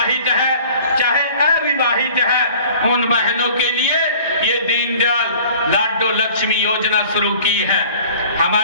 है चाहे अविवाहित है, उन बहनों के लिए ये दीनदयाल लाडो लक्ष्मी योजना शुरू की है।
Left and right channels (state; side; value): inverted; both; correlation -0.48